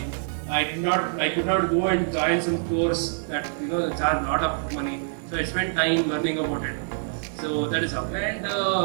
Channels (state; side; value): silent; left; digital silence